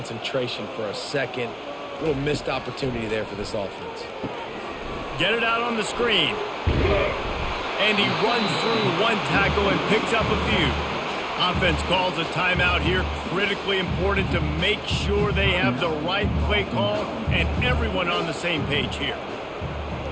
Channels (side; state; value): both; identical; correlation 1.00